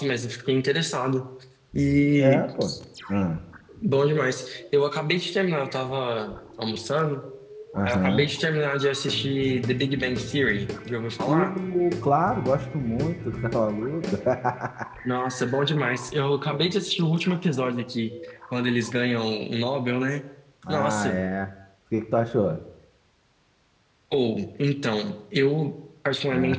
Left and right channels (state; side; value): identical; both; correlation 1.00